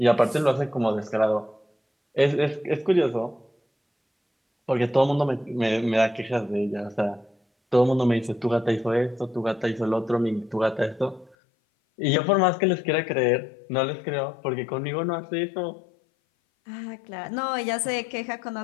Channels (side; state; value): right; drops out; at 11.4 s